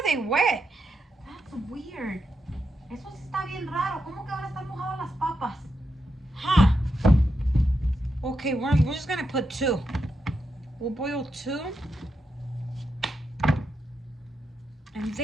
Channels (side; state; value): both; normal; correlation 0.85